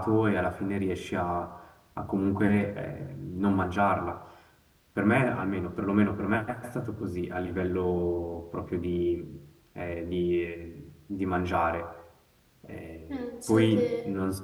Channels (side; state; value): both; identical; correlation 1.00